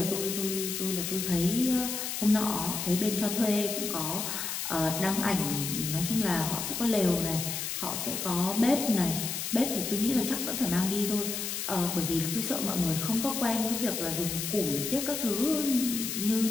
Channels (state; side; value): noise; left; hiss, 3 dB below the sound